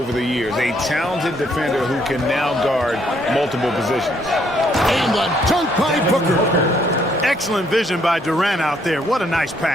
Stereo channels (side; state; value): both; normal; correlation 0.69